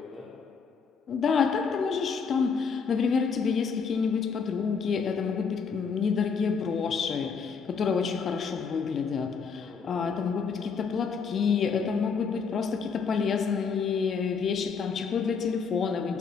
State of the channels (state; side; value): quieter; right; 5.7 dB